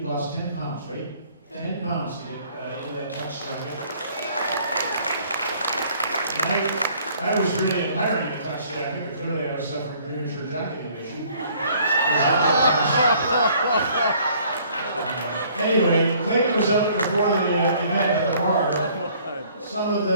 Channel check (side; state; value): both; inverted; correlation -0.58